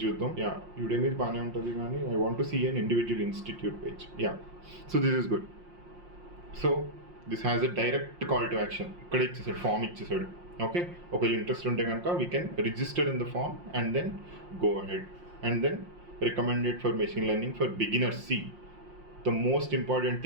చూద్దాం. యుడెమీ బాగానే ఉంటుంది, కానీ I want to see an individual institute page. So this is good. So this has a direct call to action, ఇక్కడ ఇచ్చేసాడు, ఫామ్ ఇచ్చేసాడు. ఓకే, ఒకవేళ ఇంట్రెస్ట్ ఉంటే కనుక we can register in the form and then go ahead. And then recommended for machine learning for beginners. See the most important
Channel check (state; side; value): late; left; 5.6 ms